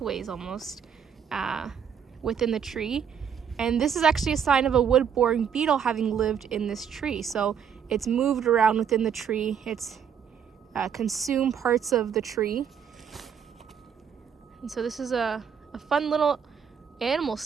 almost within the tree. And this is actually a sign of a wood-boring beetle having lived in this tree. So it's moved around within the tree. It's consumed parts of the tree. And so this is a fun little animal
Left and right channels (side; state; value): left; quieter; 7.7 dB